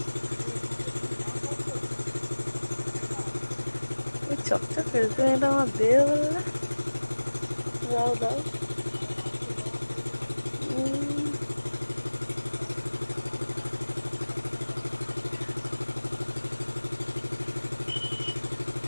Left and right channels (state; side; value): inverted; both; correlation -1.00